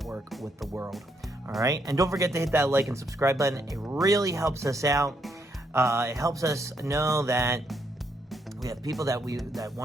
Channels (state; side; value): normal; both; correlation 0.75